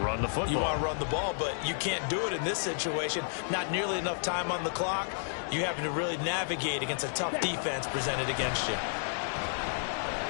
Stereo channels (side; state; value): right; silent; digital silence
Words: Run the football. You want to run the ball, but you can't do it in this situation. Not nearly enough time on the clock. You having to really navigate against a tough defense presented against you.